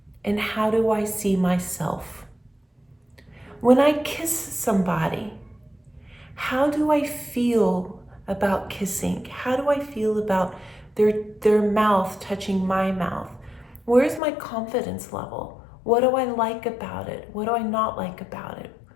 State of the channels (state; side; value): drops out; right; at 14.2 s